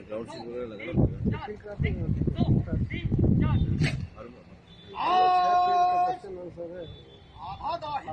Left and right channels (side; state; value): both; identical; correlation 1.00